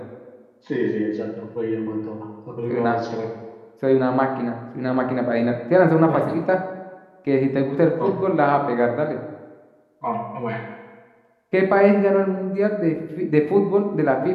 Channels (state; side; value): identical; both; correlation 1.00